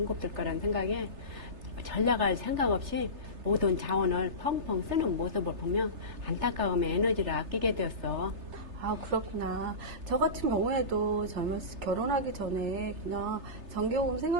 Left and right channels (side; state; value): left; late; 3.3 ms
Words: 거라는 생각에 전략할 생각 없이 모든 자원을 펑펑 쓰는 모습을 보면 안타까움에 에너지를 아끼게 되었어. 아, 그렇구나. 저 같은 경우에도 결혼하기 전에 그냥 전기요금